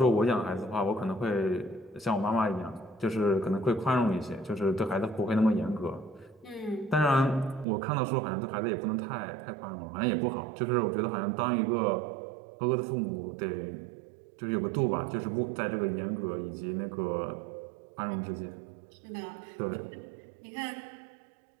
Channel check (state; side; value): drops out; left; at 7.7 s